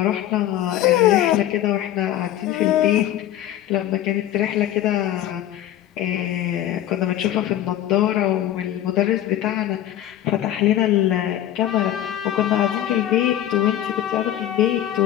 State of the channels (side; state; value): right; quieter; 12.4 dB